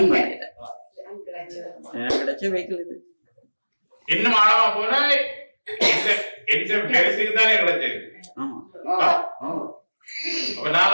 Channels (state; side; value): inverted; both; correlation -1.00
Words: பண்ணல, கிடைச்ச வெஹிக்கிள் இது. இன்னும் ஆழமா போனா தானே கிடைச்சது. அப்ப நான்